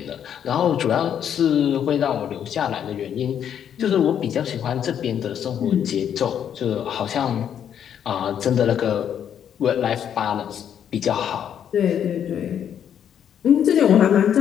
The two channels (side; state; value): right; quieter; 9.1 dB